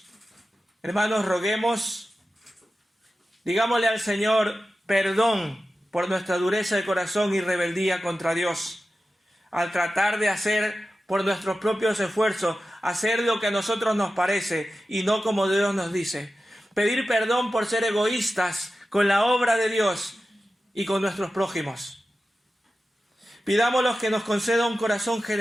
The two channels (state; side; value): normal; both; correlation 0.93